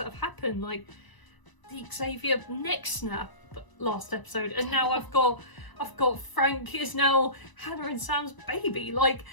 have happened, like the Xavier neck snap last episode, and now I've got Frank is now Hannah and Sam's baby. Like,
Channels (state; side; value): late; right; 1.0 ms